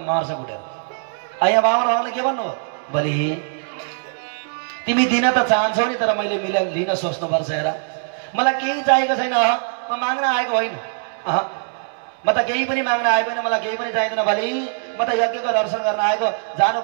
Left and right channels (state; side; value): silent; left; digital silence